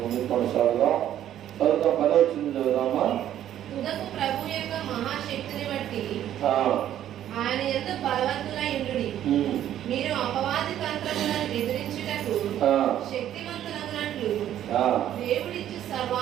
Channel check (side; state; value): left; quieter; 11.4 dB